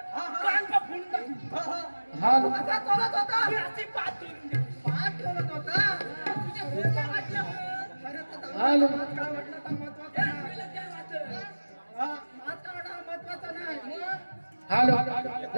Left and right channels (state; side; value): inverted; both; correlation -1.00